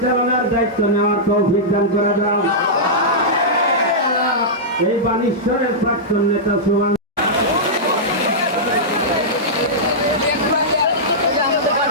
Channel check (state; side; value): normal; both; correlation -0.12